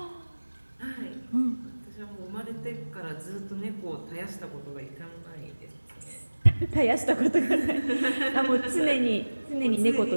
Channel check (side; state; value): both; inverted; correlation -1.00